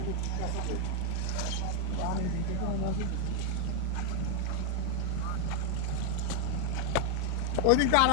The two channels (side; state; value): both; different; correlation 0.00